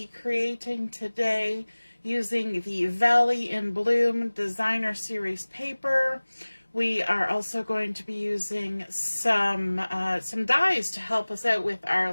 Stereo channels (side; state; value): both; inverted; correlation -1.00